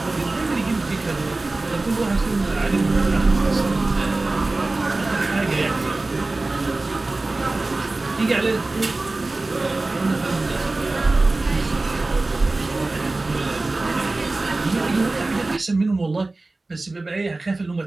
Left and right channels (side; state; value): left; quieter; 3.1 dB